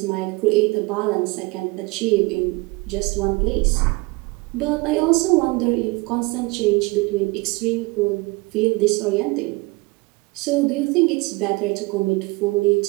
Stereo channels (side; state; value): left; quieter; 24.9 dB